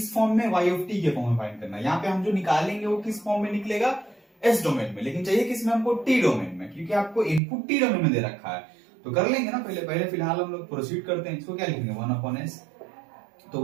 फॉर्म में, y ऑफ t के फॉर्म में फाइंड करना है। यहाँ पे हम जो निकालेंगे वो किस फॉर्म में निकलेगा, s डोमेन में, लेकिन चाहिए किसमें हमको, t डोमेन में, क्योंकि आपको इनपुट t डोमेन में दे रखा है। तो कर लेंगे ना, पहले फिलहाल हम लोग प्रोसीड करते हैं। इसको क्या लिखेंगे, 1/s। तो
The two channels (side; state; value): left; drops out; at 7.4 s